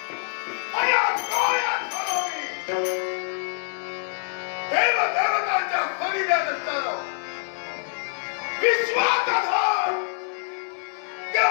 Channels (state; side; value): silent; right; digital silence